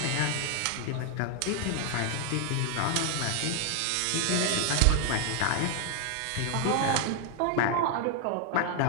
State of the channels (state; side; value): different; both; correlation 0.00